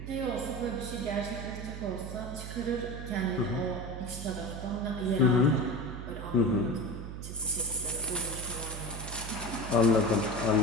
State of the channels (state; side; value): noise; right; hum, 8 dB below the sound